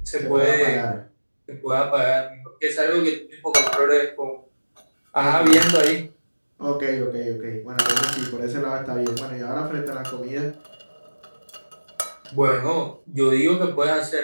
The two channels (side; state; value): both; inverted; correlation -1.00